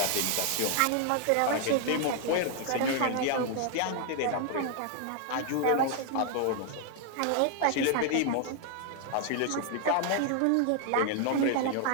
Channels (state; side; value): different; both; correlation 0.00